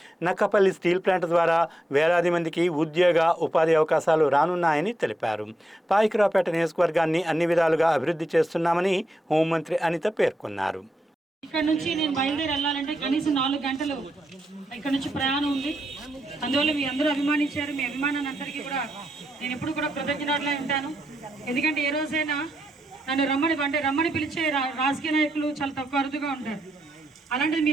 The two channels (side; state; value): both; normal; correlation 0.84